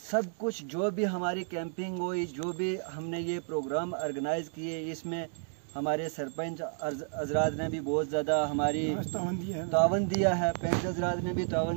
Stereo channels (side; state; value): left; silent; digital silence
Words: कुछ जो भी हमारी कैंपिंग हुई, जो भी हमने ये प्रोग्राम ऑर्गेनाइज़ किए, इसमें हमारे सरपंच हजरात ने भी बहुत ज़्यादा हमारी तावन दिया है, पंच हजरात ने भी